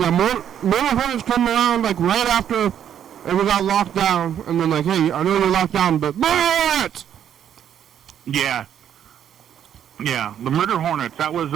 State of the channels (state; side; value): quieter; left; 9.6 dB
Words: more hornets come around like right after we got locked down, and then like, hey, I know you're locked down, but bullets! Yeah, the murder hornets. That was